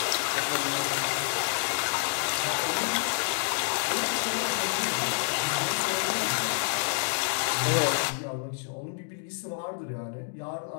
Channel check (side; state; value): right; silent; digital silence